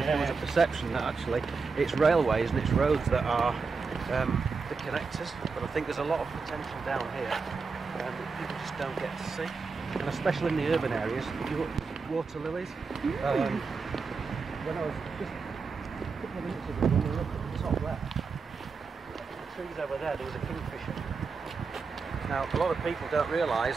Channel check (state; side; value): quieter; left; 4.8 dB